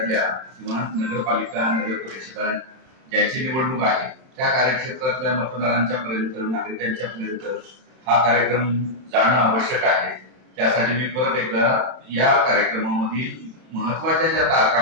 किंवा नगरपालिका नगर परिषदा ज्यांची निवडणूक आहे त्या कार्यक्षेत्रातल्या मतदारांच्या पर्यंत नागरिकांच्या पर्यंत हा कार्यक्रम जाणं आवश्यक आहे. त्यासाठी मी परत एकदा या कार्यक्रमामधील महत्वाच्या ज्या तारखा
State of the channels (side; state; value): left; late; 31 ms